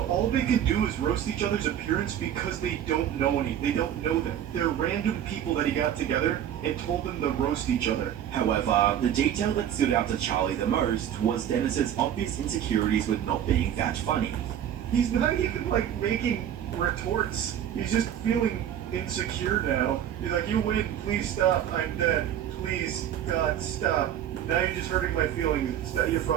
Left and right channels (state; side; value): quieter; left; 10.2 dB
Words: all they could do is roast each other's appearance because they don't know they don't know them. They're random people that he got together and told them to roast each other. However, the detail that stood out to Charlie the most was Dennis's obvious insecurities with not being that funny. He's not even like making retorts. He's just feeling insecure now. He's like, you win, please stop, I'm dead. Please, God, stop. Now you're just hurting my feelings. You're